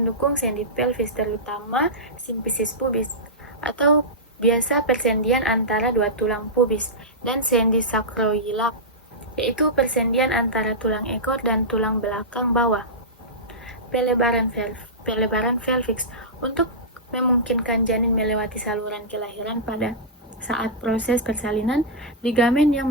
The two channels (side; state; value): both; normal; correlation -0.14